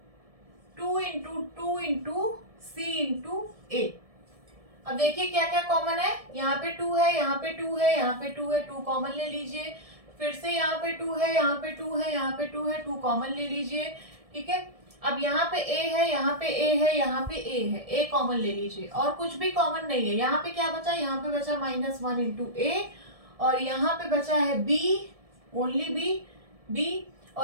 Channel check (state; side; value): late; left; 1.7 ms